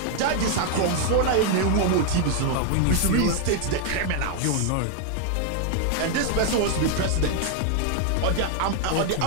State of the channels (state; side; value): different; both; correlation 0.00